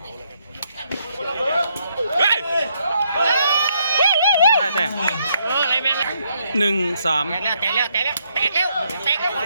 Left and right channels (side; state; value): both; inverted; correlation -0.74